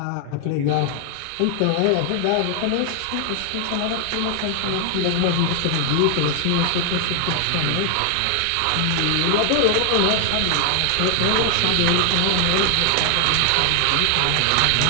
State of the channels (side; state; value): both; different; correlation 0.00